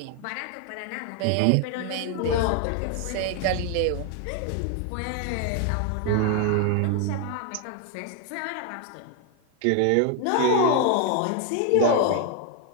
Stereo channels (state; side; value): different; both; correlation 0.00